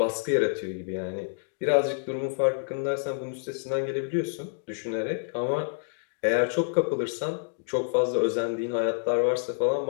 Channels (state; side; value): silent; right; digital silence